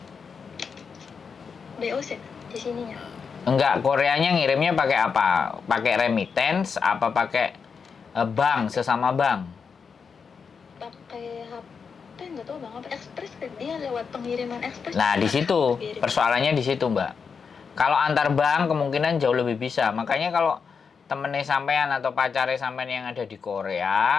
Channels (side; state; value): right; quieter; 5.8 dB